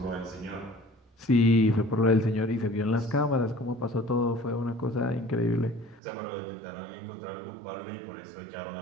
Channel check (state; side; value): drops out; left; at 6.0 s